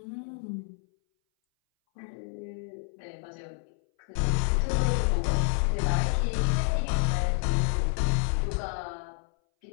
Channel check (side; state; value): right; silent; 59 dB below the other